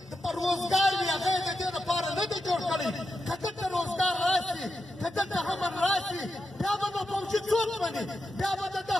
روزګار وي. هغه یې د دې لپاره نه دی جوړ کړی. که دلته روزګار راشي، که دلته امن راشي، بیا به نو فوجي څوک مني؟ بیا به د ده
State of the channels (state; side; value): normal; both; correlation 0.87